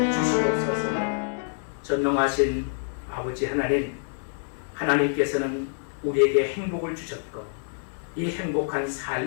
주시옵소서. 전능하신 아버지 하나님, 하나님께서는 우리에게 행복을 주셨고 이 행복한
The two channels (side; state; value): right; silent; digital silence